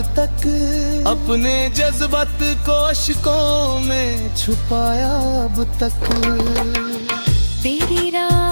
तक, अपने जज्बात को अश्कों में छुपाया अब तक। तेरी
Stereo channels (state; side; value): inverted; both; correlation -1.00